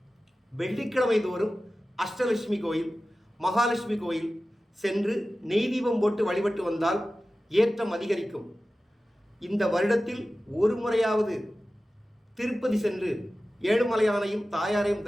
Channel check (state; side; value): normal; both; correlation 0.95